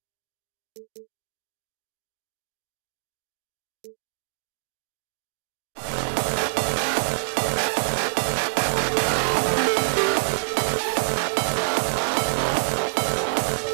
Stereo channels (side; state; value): left; silent; digital silence